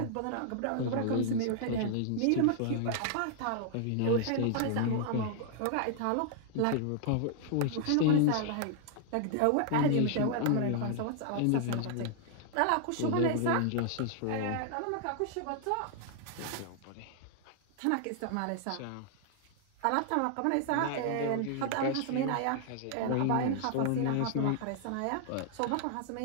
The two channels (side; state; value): both; different; correlation 0.00